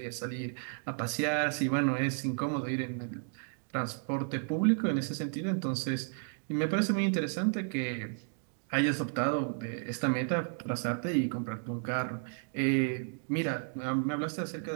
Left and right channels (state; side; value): silent; left; 56 dB below the other